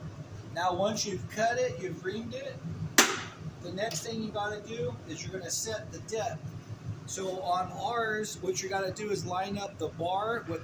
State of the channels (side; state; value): both; identical; correlation 1.00